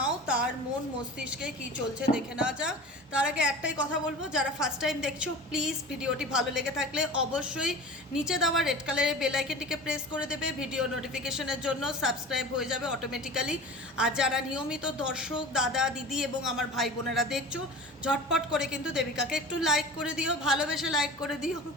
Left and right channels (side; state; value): both; normal; correlation 0.36